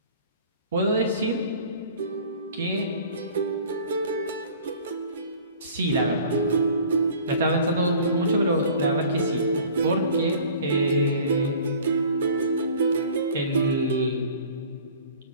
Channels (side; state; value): both; inverted; correlation -0.48